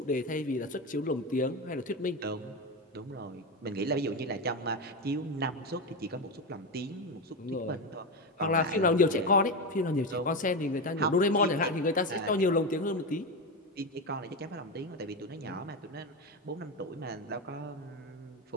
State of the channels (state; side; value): normal; both; correlation 0.16